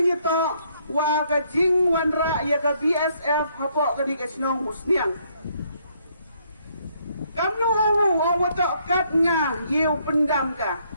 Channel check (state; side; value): inverted; both; correlation -0.69